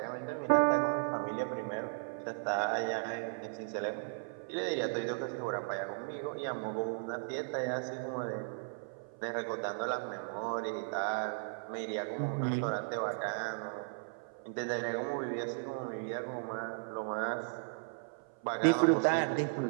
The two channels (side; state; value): left; silent; 54 dB below the other